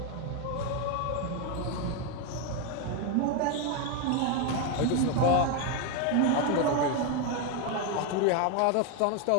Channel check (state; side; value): different; both; correlation 0.02